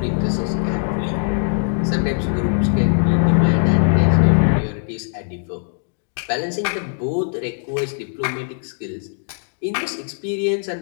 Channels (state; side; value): silent; right; digital silence